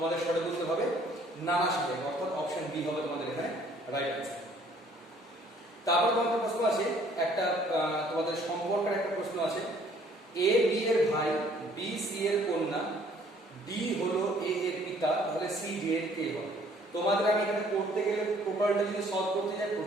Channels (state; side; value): normal; both; correlation 0.59